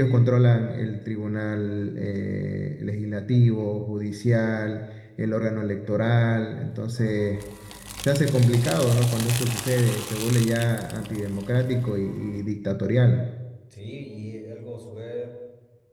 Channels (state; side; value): identical; both; correlation 1.00